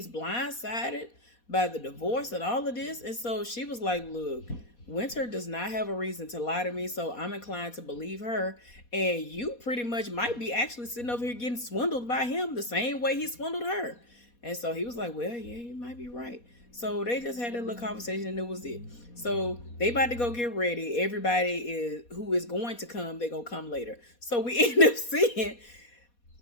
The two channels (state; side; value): late; right; 4.2 ms